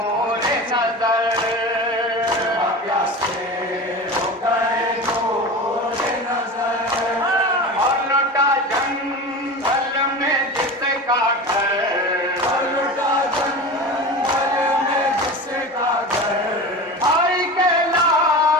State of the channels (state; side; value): normal; both; correlation 0.30